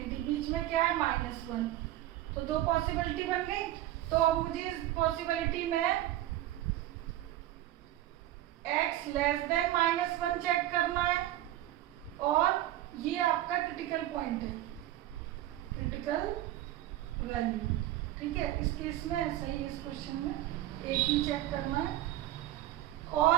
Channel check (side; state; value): left; quieter; 14.4 dB